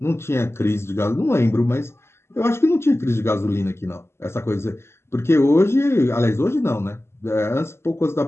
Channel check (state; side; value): late; right; 0.12 ms